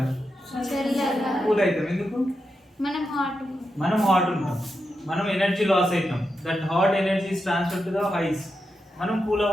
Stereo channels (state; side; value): normal; both; correlation 0.87